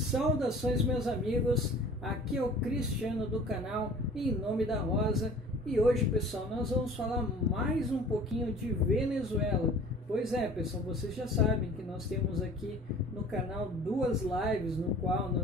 meus amigos, aqui é o Cristiano do canal Em Nome da Rosa e hoje, pessoal, nós vamos falar mais um pouquinho de Venezuela. Pois é, pessoal, vocês já sabem que nós temos aqui no canal duas lives no qual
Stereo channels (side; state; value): both; normal; correlation 0.46